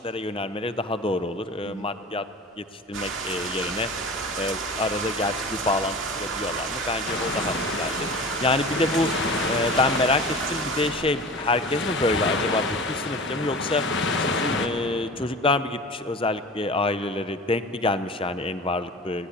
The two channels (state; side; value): normal; both; correlation 0.36